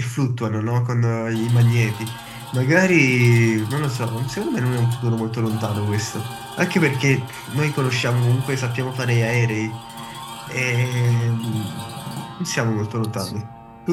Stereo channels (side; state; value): both; identical; correlation 1.00